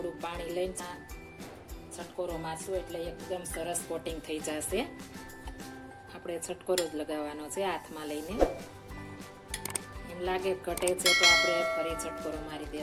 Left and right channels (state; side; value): identical; both; correlation 1.00